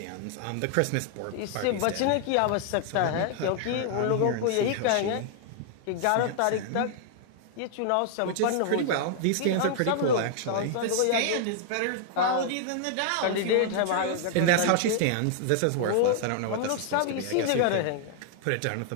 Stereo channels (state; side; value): different; both; correlation 0.00